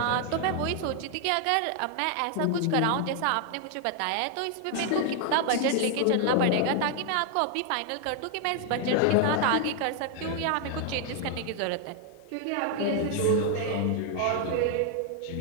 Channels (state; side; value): different; both; correlation 0.00